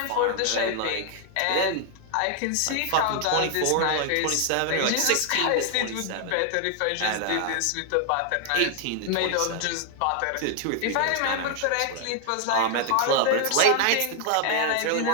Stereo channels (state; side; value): different; both; correlation 0.00